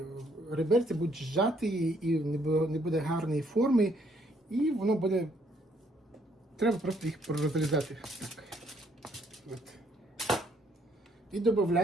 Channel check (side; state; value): both; normal; correlation 0.67